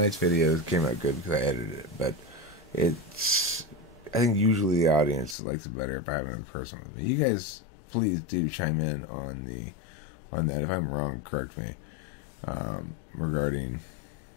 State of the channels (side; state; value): right; drops out; at 5.4 s